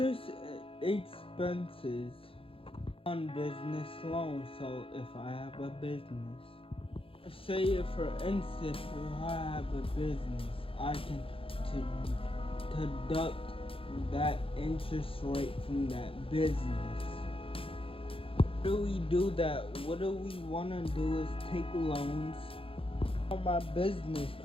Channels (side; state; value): right; late; 0.27 ms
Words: expenses on business loans. So if I have a business, say for instance, if I have a business, I can deduct that interest rate from that business. How do we do that? What do we want to do is take loans on my business.